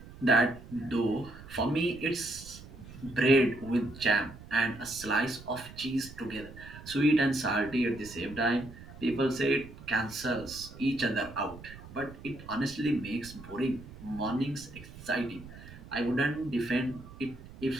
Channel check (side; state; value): right; noise; rumble, 16 dB below the sound